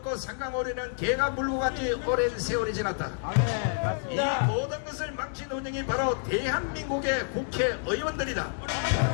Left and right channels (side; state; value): right; silent; digital silence